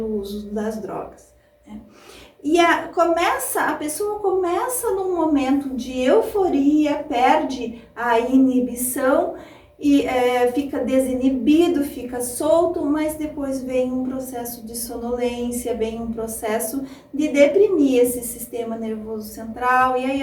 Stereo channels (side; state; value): both; identical; correlation 1.00